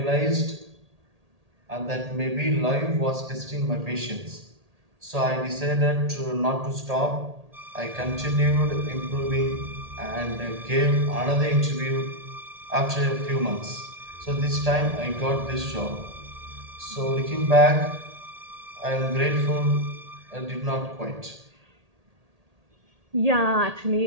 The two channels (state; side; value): late; left; 1.8 ms